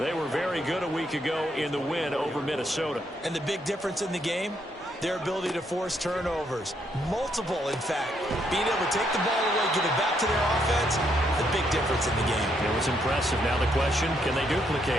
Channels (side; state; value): both; normal; correlation 0.74